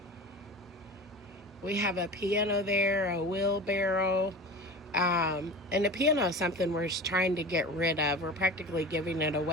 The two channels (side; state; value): both; normal; correlation 0.33